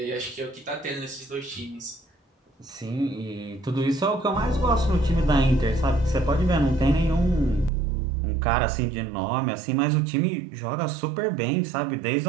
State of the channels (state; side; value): drops out; left; at 7.7 s